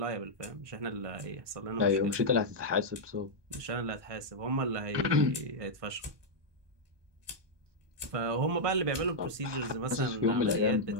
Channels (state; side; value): late; left; 1.2 ms